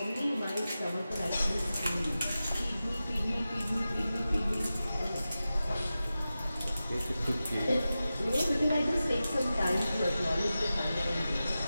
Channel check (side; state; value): both; inverted; correlation -0.94